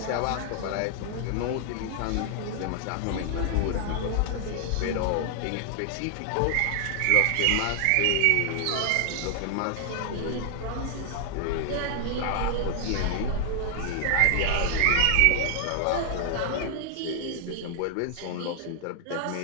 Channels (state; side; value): different; both; correlation 0.00